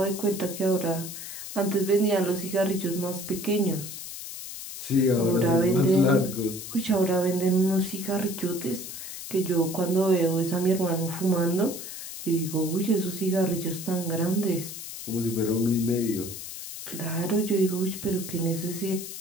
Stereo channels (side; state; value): left; noise; hiss, 10 dB below the sound